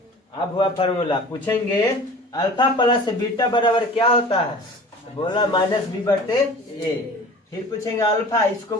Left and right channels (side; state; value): both; normal; correlation 0.41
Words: अब हुआ फॉर्मूला। पूछेंगे अल्फा प्लस बीटा बराबर क्या होता है, तो बोला माइनस बी बटे ए। फिर पूछेंगे अल्फा, इसको